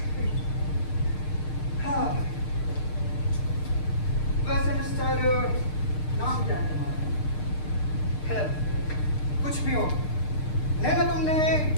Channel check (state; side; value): late; right; 6.6 ms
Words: हाँ। वैसे मिस्टर, नाम क्या है तुम्हारा? खैर, कुछ भी हो, नैना तुमने